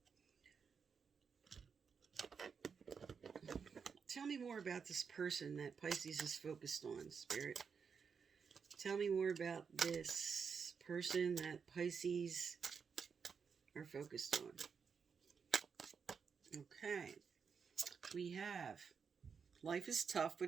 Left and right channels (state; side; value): quieter; left; 6.1 dB